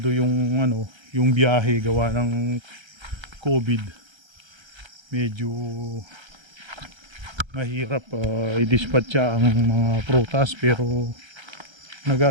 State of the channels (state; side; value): late; left; 1.3 ms